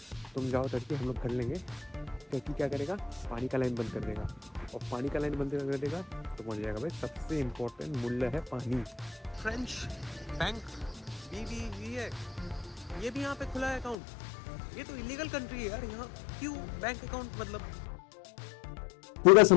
तुम जाओ टर्की, हम लोग कर लेंगे, टर्की क्या करेगा? पानी का लाइन बंद कर देगा, और पानी का लाइन बंद कर देगा तो पहुंच जाएगा भाई सबसे इम्पोर्टेंट मूल्य है पानी। फ्रेंच बैंक BBV है, ये भी यहाँ पे खुला है अकाउंट। ये तो इलीगल कंट्री है यार, यहाँ क्यों बैंक अकाउंट? मतलब पूरा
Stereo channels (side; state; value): right; drops out; at 14.0 s